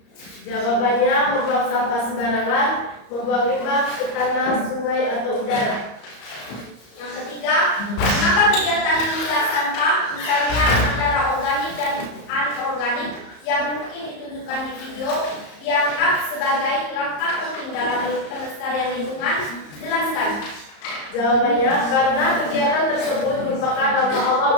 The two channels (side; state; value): right; late; 34 ms